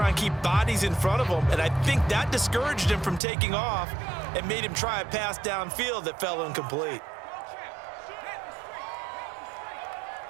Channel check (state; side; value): drops out; left; at 3.2 s